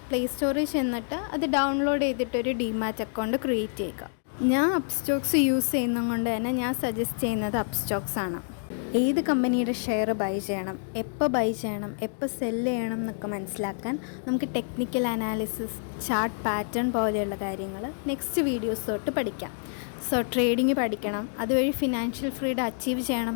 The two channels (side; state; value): right; silent; digital silence